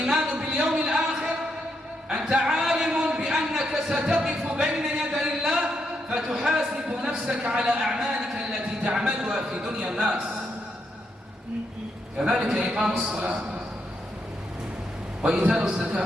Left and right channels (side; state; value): both; normal; correlation 0.80